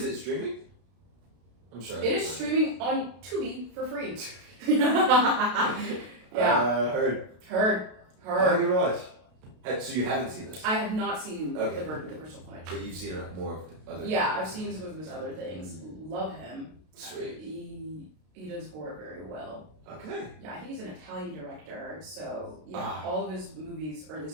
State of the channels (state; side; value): late; left; 32 ms